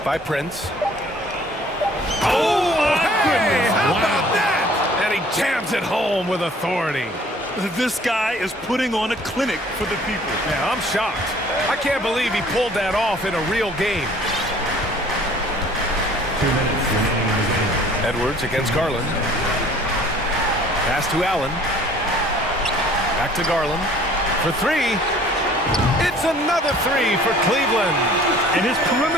by Prince. Oh, my goodness! How about that? And he jams it home with authority. This guy is putting on a clinic for the people. Yeah, I'm shocked. I can't believe he pulled that off in a real game. 2 minutes remaining in the game. Edwards against Garland. Pass to Allen. Back to Garland. For 3. It's another 3 for Cleveland. And his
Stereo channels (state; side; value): normal; both; correlation 0.53